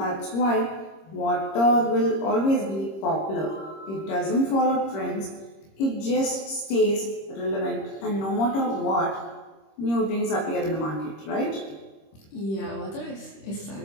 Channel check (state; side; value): late; right; 26 ms